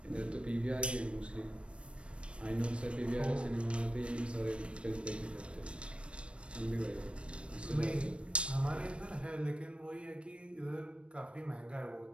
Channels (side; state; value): left; late; 0.059 ms